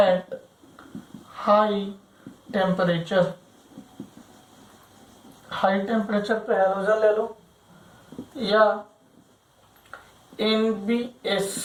high temperature, high temperature पे हैलोजन ले लो, या NBS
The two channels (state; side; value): identical; both; correlation 1.00